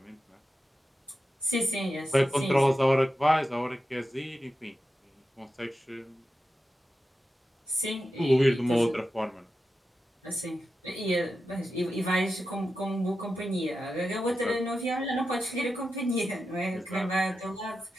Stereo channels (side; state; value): both; normal; correlation 0.90